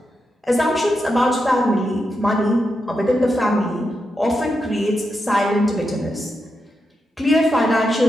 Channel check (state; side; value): normal; both; correlation 0.86